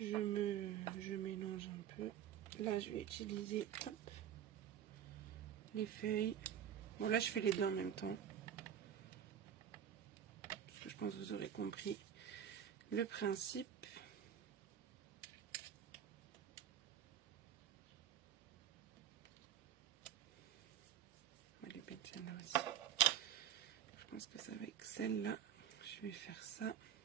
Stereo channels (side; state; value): left; quieter; 9.7 dB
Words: mélange un peu. Là, je vais utiliser hop, les feuilles. Bon, là, je fais les deux en même temps. Parce que je pense que vous aurez compris le principe. On va les mettre celle-là aussi. Je pense que ça va avec celle-là. Je vais faire ça.